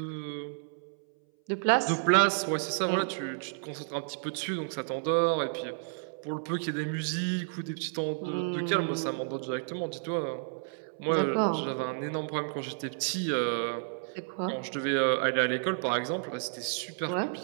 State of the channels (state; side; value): silent; left; 57 dB below the other